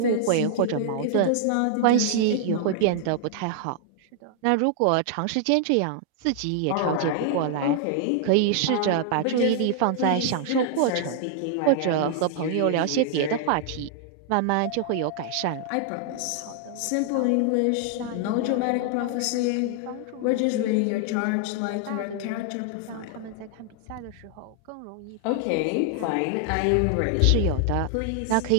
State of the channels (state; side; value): different; both; correlation 0.00